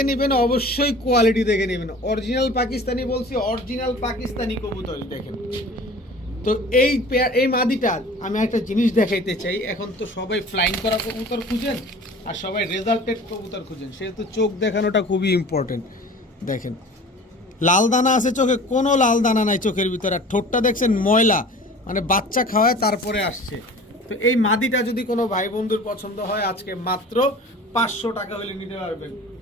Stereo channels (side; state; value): both; normal; correlation 0.43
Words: নেবেন অবশ্যই কোয়ালিটি দেখে নেবেন, অরিজিনাল পাকিস্তানি বলছি, অরিজিনাল পাকিস্তানি কবুতর দেখেন। তো এই মাদিটার আমি একটা জিনিস দেখাইতে চাই। এখন তো সবাই ফ্লাইং করা কবুতর খুঁজেন আর সবাই রেজাল্টেড কবুতর খুঁজেন, সেহেতু চোখ দেখানোটা খুবই ইম্পর্টেন্ট। দেখেন লাল দানা আছে চোখে, কোনো লাল দানা নাই চোখের ভিতরে, আর ঠোঁটটা দেখছেন ময়লা, মানে বাচ্চা খাওয়ায় তারপরে আসছে। তো এই মাদিটা যদি কোনো ভাই বন্ধুর পছন্দ হয় আজকে মাত্র 500 টাকা হলে নিতে পারবেন।